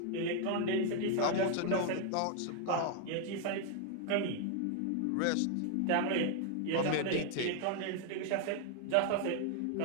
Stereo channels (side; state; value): both; different; correlation 0.00